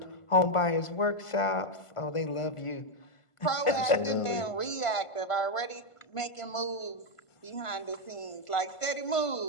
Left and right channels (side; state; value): right; late; 1.5 ms